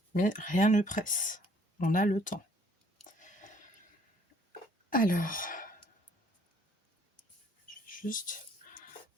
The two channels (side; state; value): both; normal; correlation 0.61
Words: Mais rien ne presse, on a le temps. Alors, je vais juste